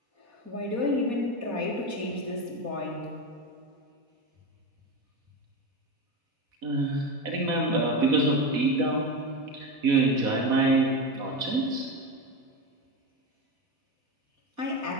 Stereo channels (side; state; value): left; late; 4.1 ms